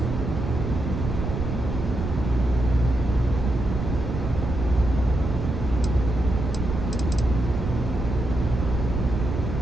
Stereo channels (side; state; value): right; noise; rumble, 4 dB below the sound